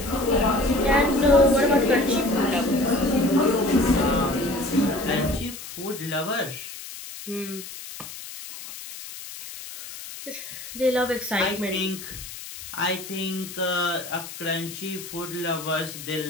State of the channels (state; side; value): noise; left; hiss, 12 dB below the sound